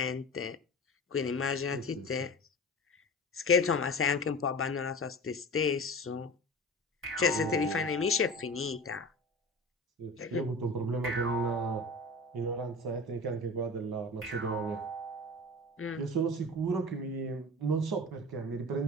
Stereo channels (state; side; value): normal; both; correlation 0.34